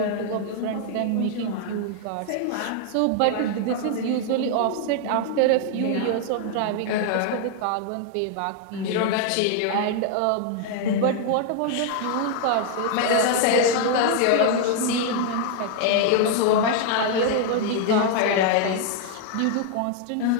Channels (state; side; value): different; both; correlation 0.00